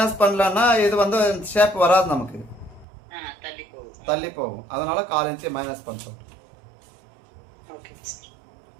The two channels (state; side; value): drops out; left; at 2.9 s